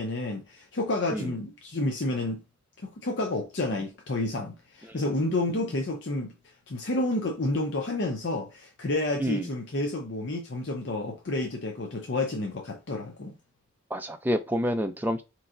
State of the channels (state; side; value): normal; both; correlation 0.34